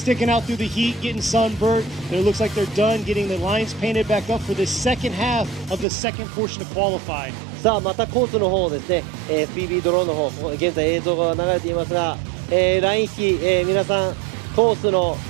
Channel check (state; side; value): drops out; left; at 5.9 s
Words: out through the heat, getting sunburned. It looks like they're done getting the lines painted back up for the second half of the second portion to qualify. さあまたコースの方ですね、FPV ドローンの方、現在映像が流れていますが、ライン引き、皆さんコースの